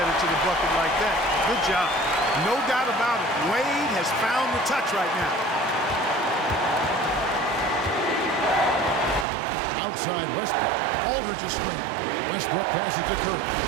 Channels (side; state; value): left; drops out; at 9.2 s